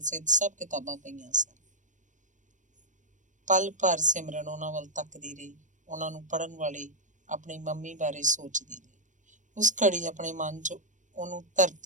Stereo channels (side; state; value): left; late; 0.36 ms